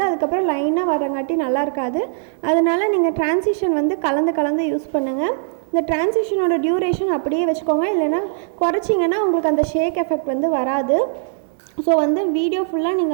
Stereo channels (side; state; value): left; silent; digital silence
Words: அதுக்கப்புறம் லைனாக வரங்காட்டி நல்லா இருக்காது. அதனால் நீங்கள் ட்ரான்சிஷன் வந்து கலந்து யூஸ் பண்ணுங்கள். இந்த ட்ரான்சிஷனோட டியூரேஷன் அப்படியே வச்சுக்கோங்க, இல்லைன்னா குறைச்சிங்கன்னா உங்களுக்கு அந்த ஷேக் எஃபெக்ட் வந்து வராது. ஸோ வந்து வீடியோ ஃபுல்லாக